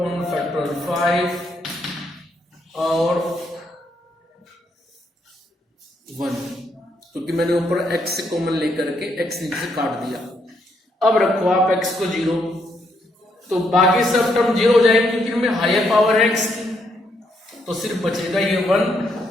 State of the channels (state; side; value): normal; both; correlation 0.75